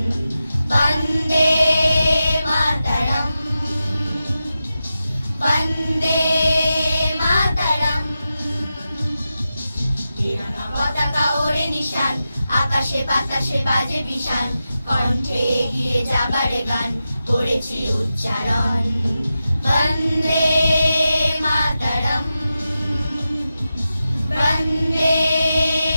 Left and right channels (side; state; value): both; inverted; correlation -0.91